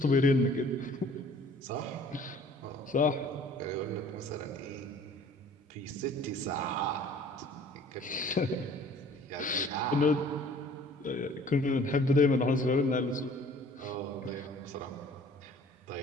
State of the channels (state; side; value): normal; both; correlation 0.52